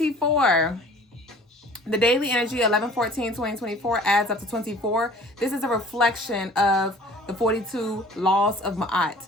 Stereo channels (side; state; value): both; normal; correlation 0.48